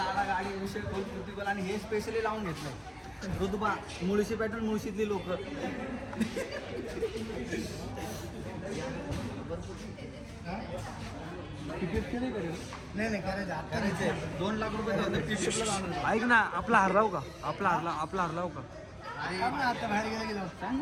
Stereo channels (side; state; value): both; identical; correlation 1.00